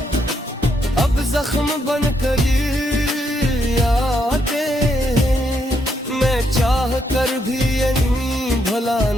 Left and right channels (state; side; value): normal; both; correlation 0.77